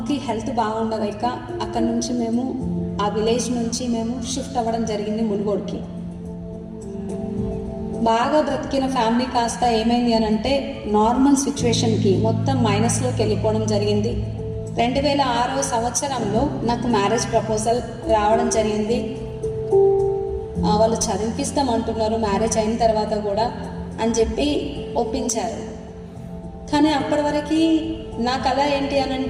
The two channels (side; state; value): both; identical; correlation 1.00